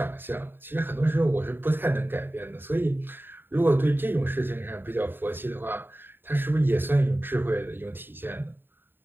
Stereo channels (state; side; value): late; left; 0.097 ms